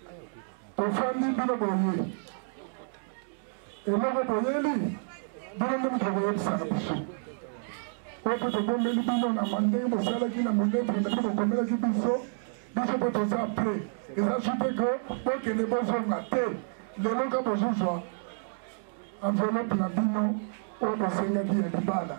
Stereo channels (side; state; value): left; silent; digital silence